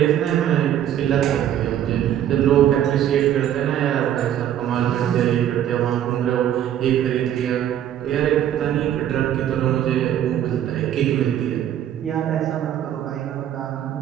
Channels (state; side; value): quieter; left; 10.9 dB